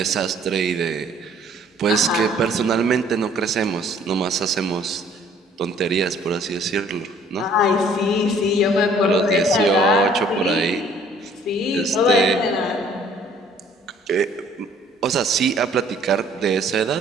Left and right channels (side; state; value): both; normal; correlation 0.57